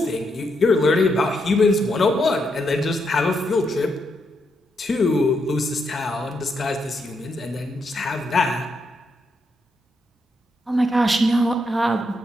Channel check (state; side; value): normal; both; correlation 0.80